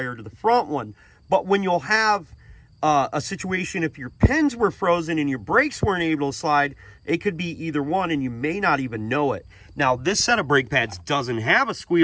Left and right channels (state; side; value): identical; both; correlation 1.00